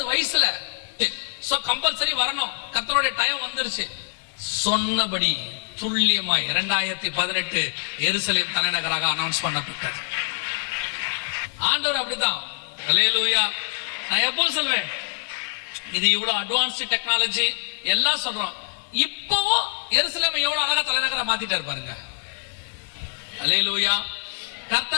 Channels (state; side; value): silent; right; 59 dB below the other